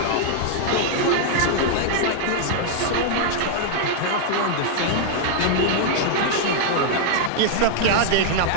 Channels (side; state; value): both; different; correlation 0.00